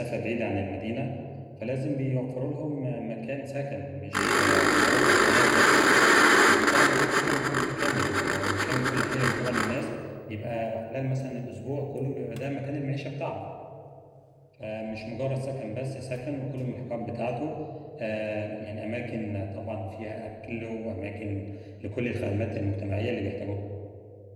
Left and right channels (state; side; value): identical; both; correlation 1.00